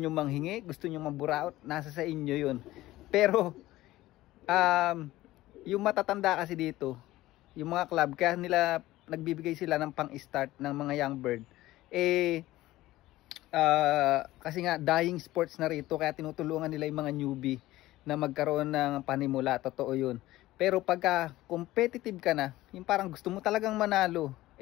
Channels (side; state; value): right; quieter; 16.6 dB